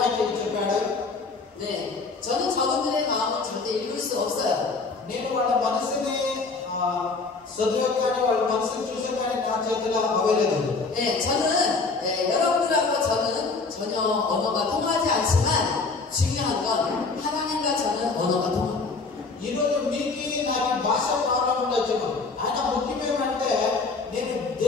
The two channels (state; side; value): quieter; right; 4.1 dB